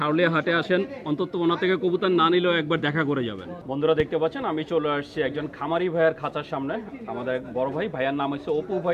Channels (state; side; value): identical; both; correlation 1.00